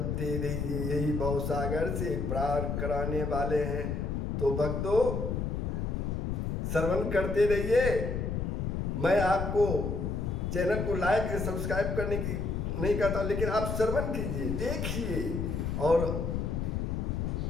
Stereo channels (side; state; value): left; noise; rumble, 1 dB below the sound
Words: रहिए, यही भवसागर से पार कराने वाले हैं। तो भक्तों श्रवण करते रहिए। मैं आपको चैनल को लाइक या सब्सक्राइब करने की नहीं कहता, लेकिन आप श्रवण कीजिए, देखिए और